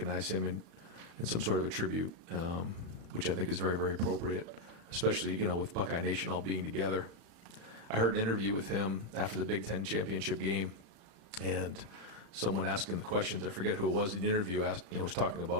him in some sort of a tribute, which I think is very, very appropriate, especially, with Buckeye Nation all being together. I heard an interview with him after the Big Ten championship game, and someone asking the questions, I forget who it was in the interview, was talking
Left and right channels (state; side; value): late; left; 35 ms